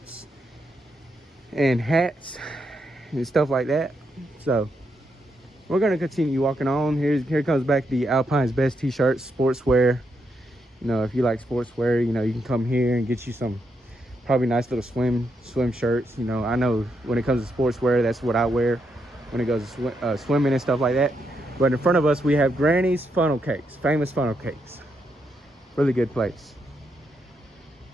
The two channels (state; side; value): normal; both; correlation 0.80